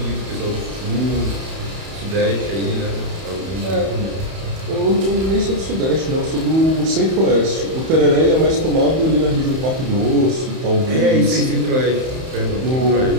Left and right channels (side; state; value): left; late; 31 ms